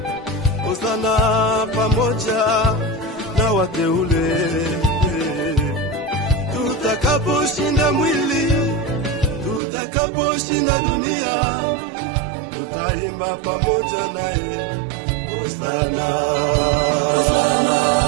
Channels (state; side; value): drops out; left; at 9.6 s